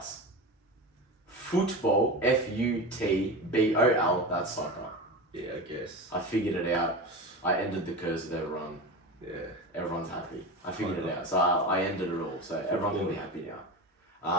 Football, Futbol, that's soccer. Yeah, I guess. I figured it out. I ended the curse of everyone. Yeah. Everyone's happy. I figured it out. So I ended it all. So everyone can be happy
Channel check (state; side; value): normal; both; correlation 0.26